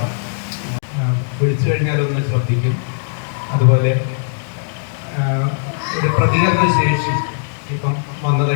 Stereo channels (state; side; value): silent; right; digital silence